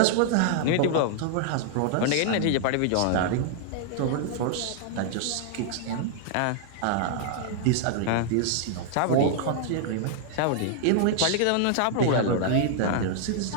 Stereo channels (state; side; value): different; both; correlation -0.01